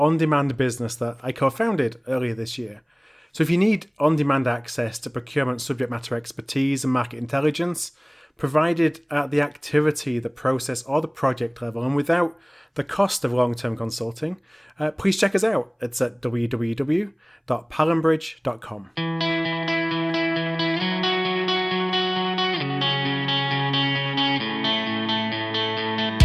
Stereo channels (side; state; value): both; identical; correlation 1.00